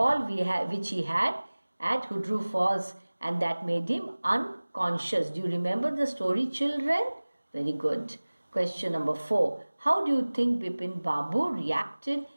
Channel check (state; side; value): inverted; both; correlation -1.00